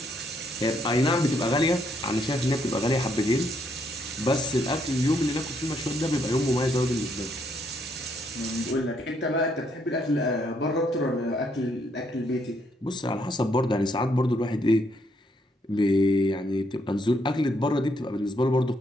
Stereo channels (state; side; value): normal; both; correlation 0.73